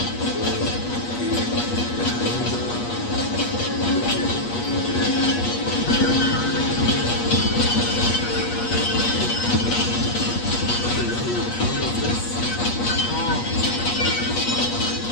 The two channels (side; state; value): right; late; 8.4 ms